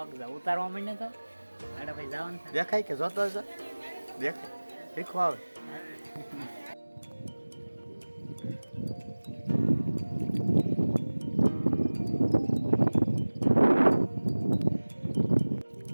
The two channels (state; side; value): inverted; both; correlation -1.00